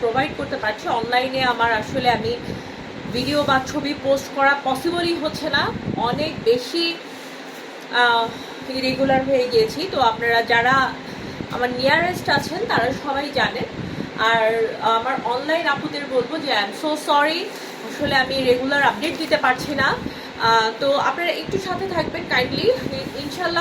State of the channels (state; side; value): identical; both; correlation 1.00